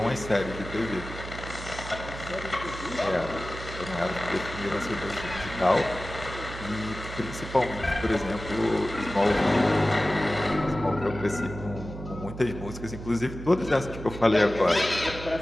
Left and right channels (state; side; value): noise; right; hum, 11 dB below the sound